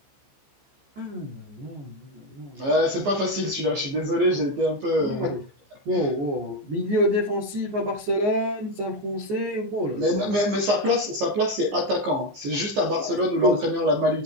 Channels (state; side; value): late; left; 15 ms